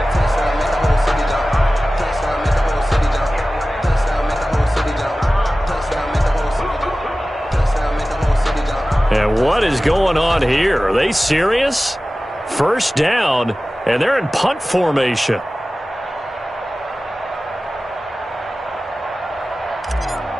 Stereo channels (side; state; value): both; normal; correlation 0.96